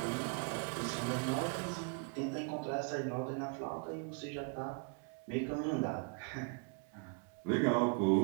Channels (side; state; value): left; quieter; 36.4 dB